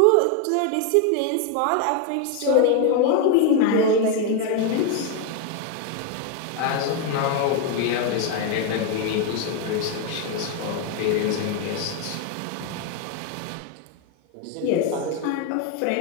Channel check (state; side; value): different; both; correlation 0.01